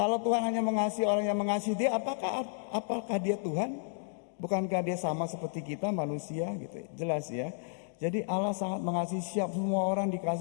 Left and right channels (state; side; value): silent; right; digital silence